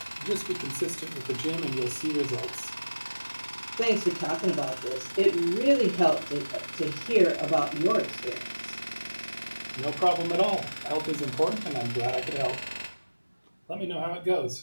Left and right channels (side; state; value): both; inverted; correlation -1.00